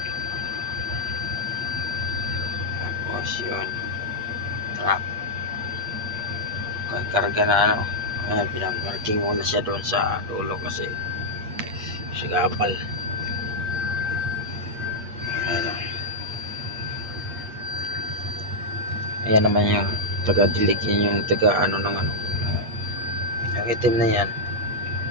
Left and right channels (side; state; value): left; late; 8.6 ms